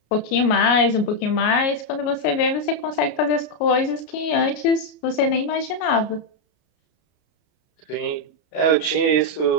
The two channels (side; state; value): right; late; 33 ms